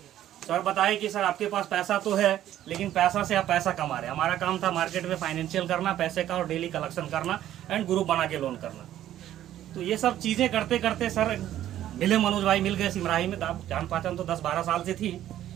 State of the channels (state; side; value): quieter; left; 12.3 dB